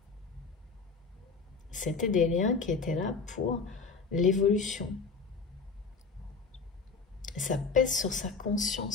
C'était des liens qui étaient là pour l'évolution. Ça pèse sur sa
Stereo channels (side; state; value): right; quieter; 4.7 dB